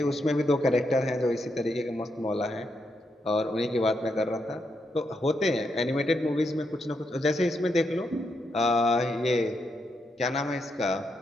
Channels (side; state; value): both; normal; correlation 0.81